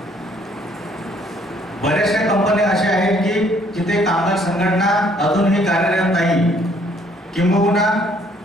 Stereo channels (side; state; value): both; normal; correlation 0.63